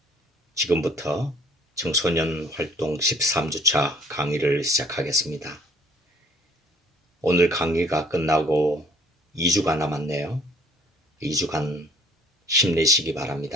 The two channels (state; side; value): normal; both; correlation 0.57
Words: 지금부터 청소년 활동 13주차 강의를 시작하겠습니다. 오늘 강의가 끝나고 2주가 남았네요. 2주간 힘내시기